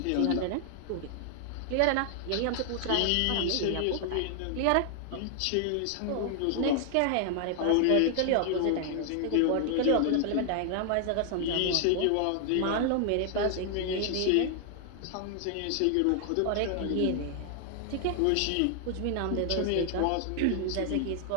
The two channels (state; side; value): different; both; correlation 0.00